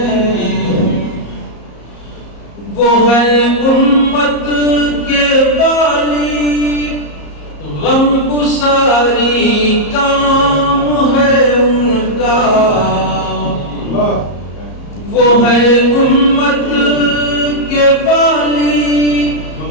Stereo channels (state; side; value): late; right; 34 ms